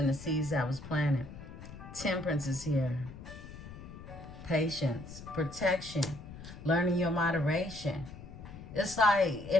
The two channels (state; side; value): noise; left; rumble, 14 dB below the sound